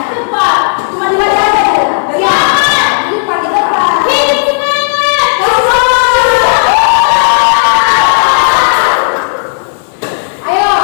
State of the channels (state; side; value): silent; right; digital silence